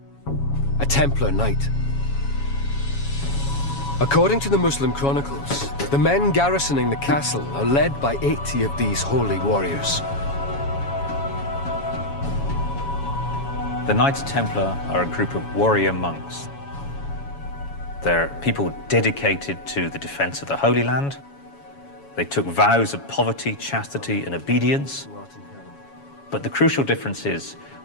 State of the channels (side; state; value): right; late; 7.2 ms